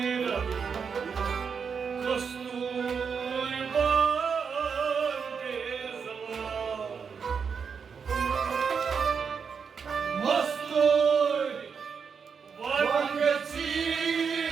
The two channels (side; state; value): left; quieter; 6.2 dB